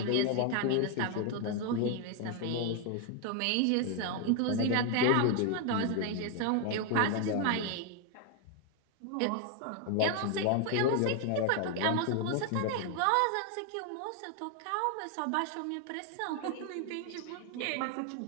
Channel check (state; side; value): different; both; correlation 0.00